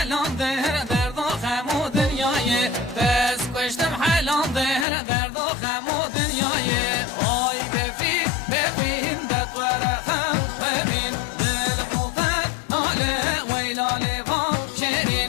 درد و خم و دنیایه بس کشتم حلان درد و خم و دنیایه آی بفین دقور خم ببین دل بوطت ناله ویلا لفام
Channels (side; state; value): right; drops out; at 4.9 s